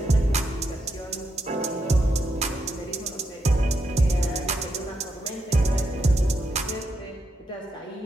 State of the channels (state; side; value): normal; both; correlation 0.81